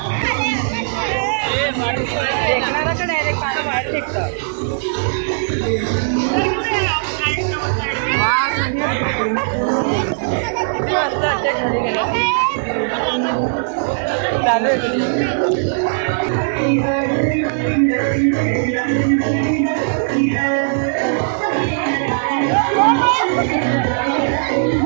फेकणारा का डायरेक्ट पाणी बाहेर फेकतं. चालू आहे.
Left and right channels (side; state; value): left; silent; digital silence